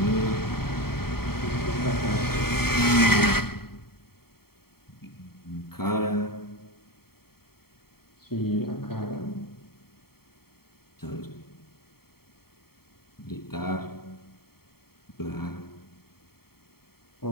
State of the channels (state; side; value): late; right; 0.95 ms